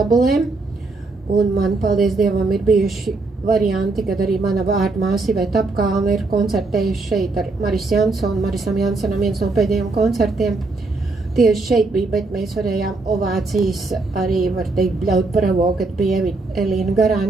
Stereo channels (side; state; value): left; quieter; 3.5 dB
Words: Un man, paldies Dievam, ir bijuši varianti, kad arī mana vārdmāsa Iveta Apkalne ir koncertējuši šeit ar Marisu Jansonu. Marisam Jansonam viens no pēdējiem koncertiem tieši šeit bija, bet mēs varējām ovācijas arī, var teikt, bļaut bravo, kad bija Elīna